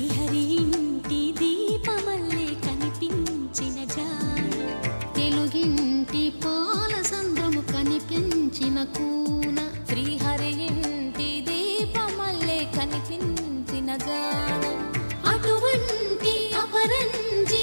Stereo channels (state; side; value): inverted; both; correlation -1.00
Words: ఇంటి దీపమల్లే కనిపించిన జాన. తెలుగింటి పాల సంద్రము కనిపించిన కూన శ్రీహరి ఇంటి దీపమల్లే కనిపించిన జాన. అటువంటి అపరంజి